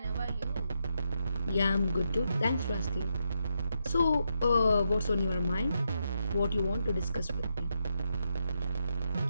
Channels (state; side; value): inverted; both; correlation -0.82